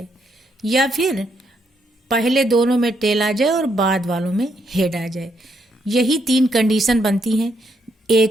या फिर पहले दोनों में टेल आ जाए और बाद वालों में हेड आ जाए। यही 3 कंडीशन बनती हैं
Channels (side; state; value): both; normal; correlation 0.76